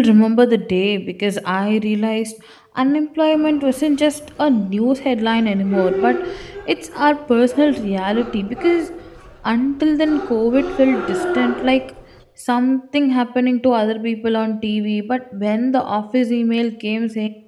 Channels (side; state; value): both; identical; correlation 1.00